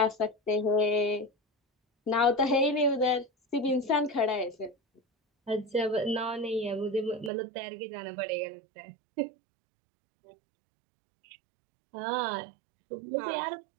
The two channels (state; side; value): drops out; left; at 7.3 s